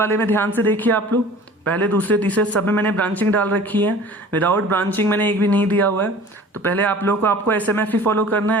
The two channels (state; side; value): normal; both; correlation 0.44